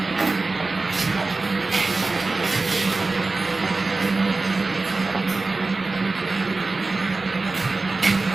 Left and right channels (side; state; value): left; quieter; 3.6 dB